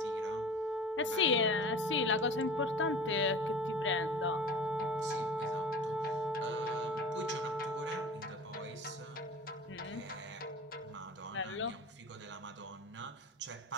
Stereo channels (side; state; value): both; normal; correlation 0.37